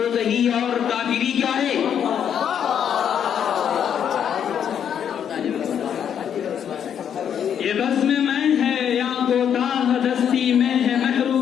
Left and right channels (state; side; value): quieter; right; 8.6 dB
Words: صحیح اور کافری کیا ہے. یہ بزم میں ہے یا کوتاہ دستی میں ہے